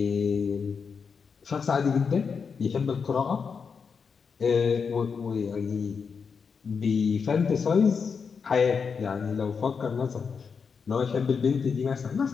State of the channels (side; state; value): right; quieter; 5.8 dB